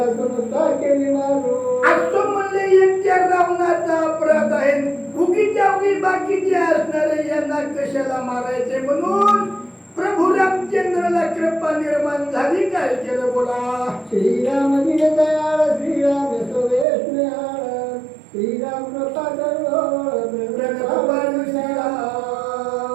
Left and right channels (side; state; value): left; drops out; at 16.9 s